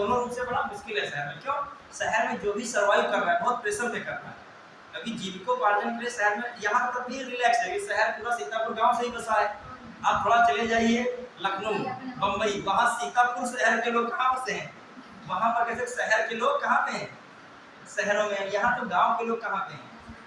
रूप से बड़ा मुश्किल है शहर में। क्यों? शहर में जो भी सर्वाइव कर रहा है बहुत प्रेशर में कर रहा है, क्योंकि जीविकोपार्जन के लिए शहर में, यहाँ तक भी रिलैक्स है कि शहर पूरा सीतापुर गांव से ही बसा है। आप थोड़ा चले जाइए लखनऊ, बम्बई, वहाँ सीतापुर शहर के लोग कहाँ बसे हैं? वहाँ पर कैसे शहर के लोग कहाँ पे हैं? शहरों में। यहाँ तो गांव के लोग कहाँ पे हैं?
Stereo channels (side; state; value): both; identical; correlation 1.00